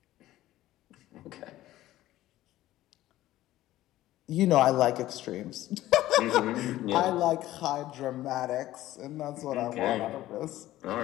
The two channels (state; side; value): quieter; right; 15.1 dB